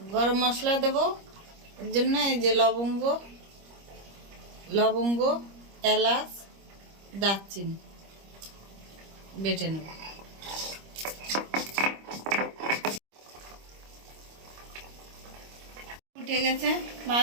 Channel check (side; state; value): left; late; 25 ms